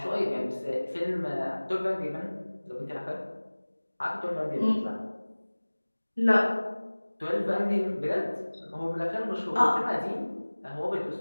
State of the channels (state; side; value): inverted; both; correlation -1.00